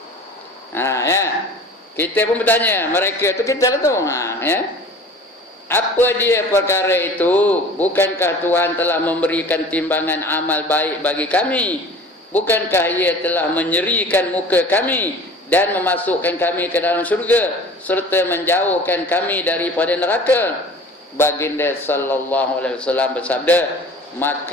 Ya. Kita pun bertanya, mereka tu kita lah tu. Ya. Apa dia perkara itu? Bukankah Tuhan telah memberikan timbangan amal baik bagi kami? Bukankah ia telah menyerikan muka kami dan memasukkan kami ke dalam syurga serta menjauhkan kami daripada neraka? Baginda sallallahu alaihi wasallam bersabda,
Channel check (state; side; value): normal; both; correlation 0.43